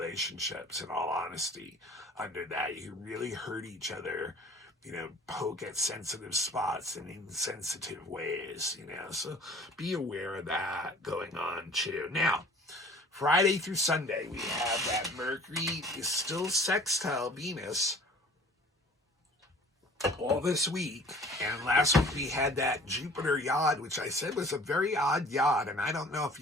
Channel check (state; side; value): normal; both; correlation 0.49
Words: in all honesty, under that. You can really hurt each other, poke at sensitive spots in insensitive ways, so be aware of that going on too. Now, Friday through Sunday, we have that Mercury is still sextile Venus all this week, and last week we had that Jupiter yod, which I said was a very odd yod, and I don't know if